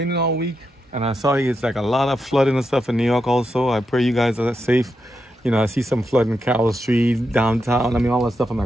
all week, and I saw it's like a lot of flooding and stuff in New York also. I pray you guys are safe. I see some flooding in Carroll Street, downtown. I mean, all that stuff. I'm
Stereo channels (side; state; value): both; normal; correlation 0.85